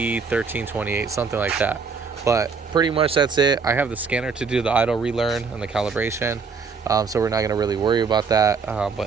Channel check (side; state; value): left; quieter; 5.2 dB